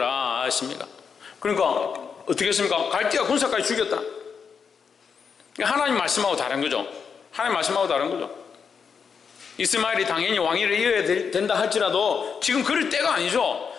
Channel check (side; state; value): right; quieter; 6.3 dB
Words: 하십니다. 그러니까 어떻게 했습니까? 갈대아 군사까지 죽였다. 하나님 말씀하고 다른 거죠. 하나님 말씀하고 다른 거죠. 이스마엘이 당연히 왕위를 이어야 된다 할지라도 지금 그럴 때가 아니죠.